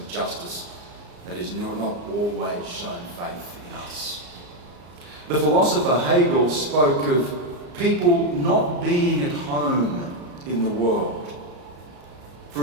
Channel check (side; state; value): left; late; 34 ms